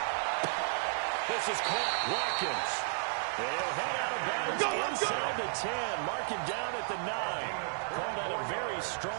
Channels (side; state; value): left; silent; 56 dB below the other